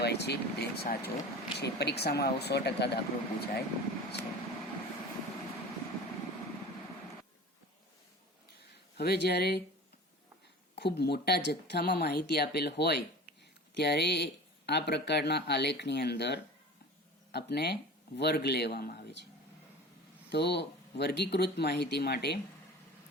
છે, તે સાચો છે. પરીક્ષામાં આવો 100% દાખલો પૂછાય છે. હવે જ્યારે ખૂબ મોટા જથ્થામાં માહિતી આપેલ હોય ત્યારે આ પ્રકારના આલેખની અંદર આપણે વર્ગ લેવામાં આવે છે. તો વર્ગીકૃત માહિતી માટે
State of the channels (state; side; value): normal; both; correlation 0.37